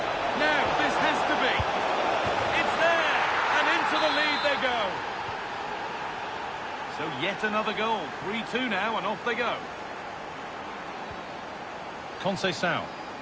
Now, this has to be. It's there! And into the lead they go. So yet another goal. 3-2 now, and off they go. Conceição.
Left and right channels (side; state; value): both; identical; correlation 1.00